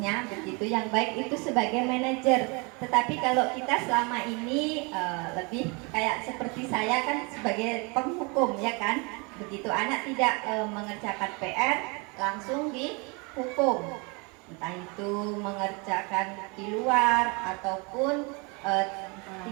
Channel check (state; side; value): quieter; left; 30.4 dB